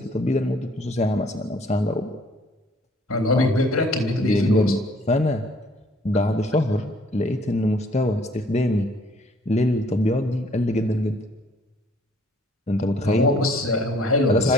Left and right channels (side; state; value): both; normal; correlation 0.59